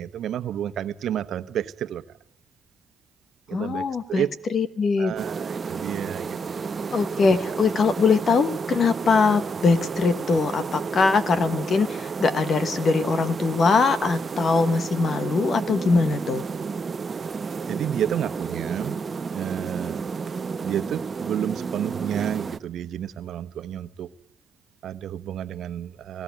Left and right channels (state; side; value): normal; both; correlation 0.78